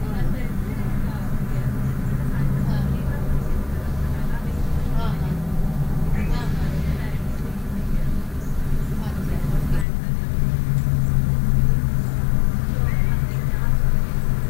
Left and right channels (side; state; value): right; drops out; at 9.9 s